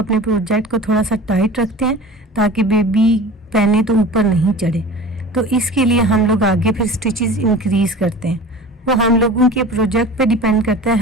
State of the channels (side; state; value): both; normal; correlation 0.38